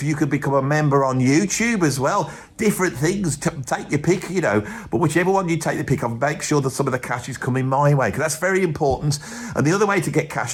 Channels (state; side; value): identical; both; correlation 1.00